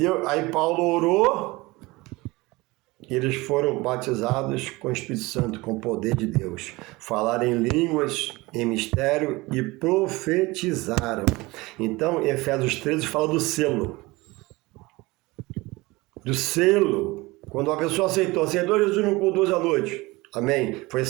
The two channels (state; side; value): quieter; left; 22.0 dB